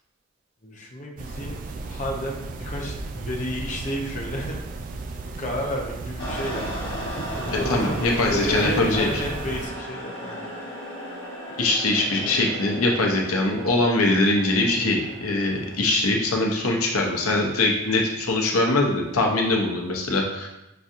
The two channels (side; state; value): both; normal; correlation 0.34